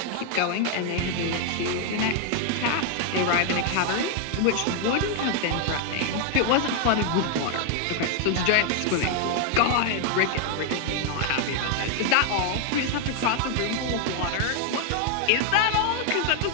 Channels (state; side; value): different; both; correlation 0.00